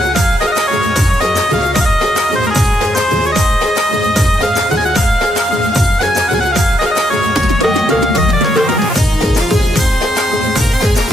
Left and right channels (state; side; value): normal; both; correlation 0.77